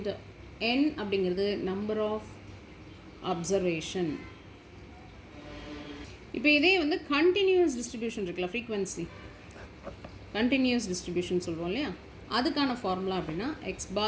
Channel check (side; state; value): both; identical; correlation 1.00